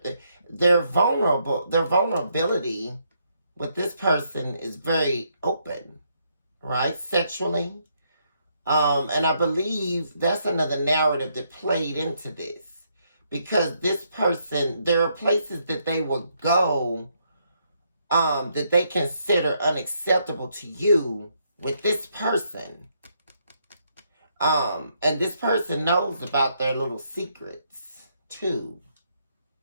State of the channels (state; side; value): inverted; both; correlation -0.75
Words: vulnerability with this person is very open, right, sexually. And I believe that's another narrative that played into this. Because this person, there are places that they will go that they consider unacceptable to you with this person. And this person knows about their little secrets, too.